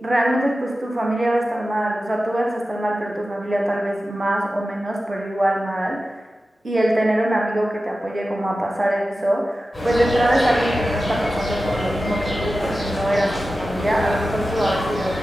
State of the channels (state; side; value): normal; both; correlation 0.94